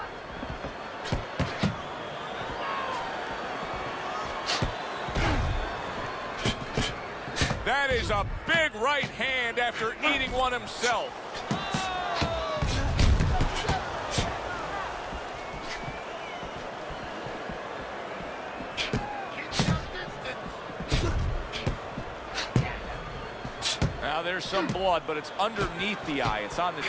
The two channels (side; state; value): both; identical; correlation 1.00